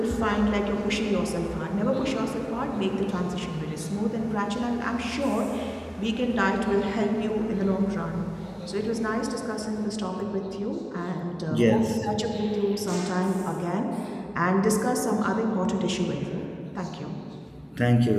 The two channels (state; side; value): identical; both; correlation 1.00